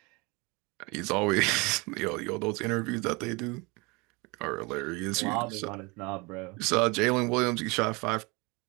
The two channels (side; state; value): left; quieter; 27.2 dB